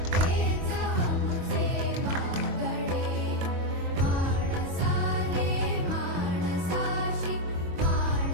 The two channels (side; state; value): left; late; 22 ms